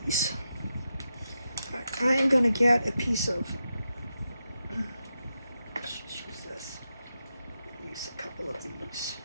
All right, I am going to get a piece of, let's just use this, use a couple of these.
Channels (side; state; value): both; inverted; correlation -0.87